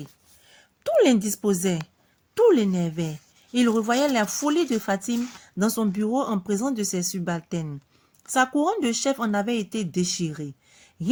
Tout l'indisposait, tout l'énervait. Il revoyait la folie de Fatime dans son bureau en présence de ses subalternes. Sa couronne de chef en avait été déchirée.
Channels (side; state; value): both; identical; correlation 1.00